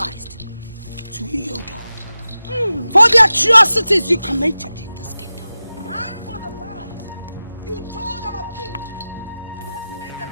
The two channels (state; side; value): inverted; both; correlation -0.95